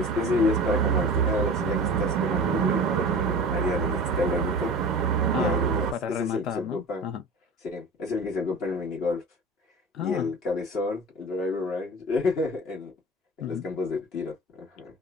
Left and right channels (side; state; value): both; normal; correlation 0.36